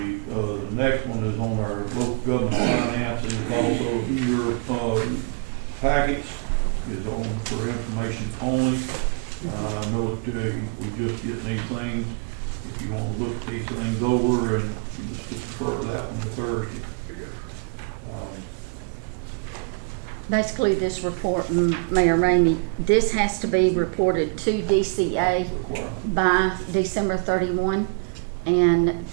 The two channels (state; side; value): quieter; left; 37.4 dB